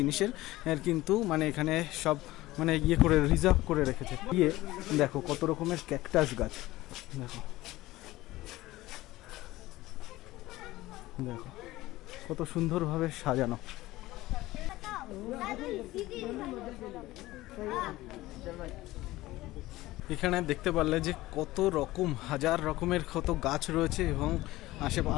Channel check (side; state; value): right; quieter; 17.7 dB